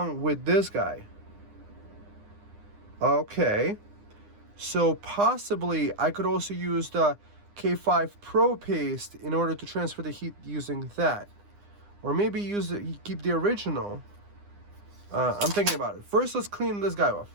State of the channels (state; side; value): late; left; 9.8 ms